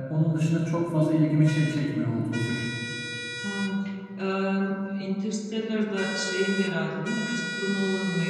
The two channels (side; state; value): both; identical; correlation 1.00